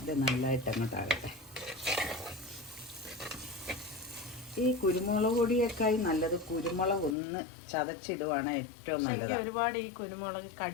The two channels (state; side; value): drops out; right; at 7.2 s